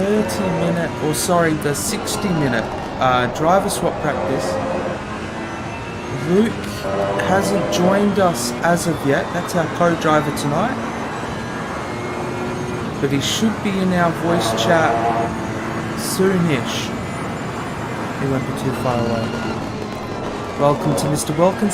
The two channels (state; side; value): identical; both; correlation 1.00